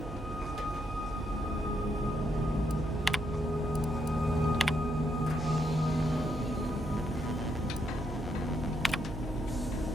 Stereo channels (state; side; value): noise; right; hum, 9 dB below the sound